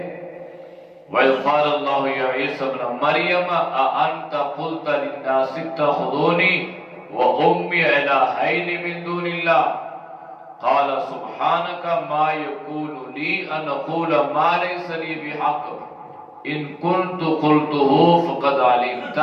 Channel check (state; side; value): identical; both; correlation 1.00